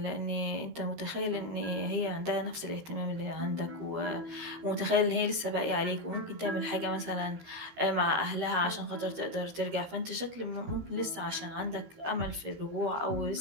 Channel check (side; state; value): left; late; 13 ms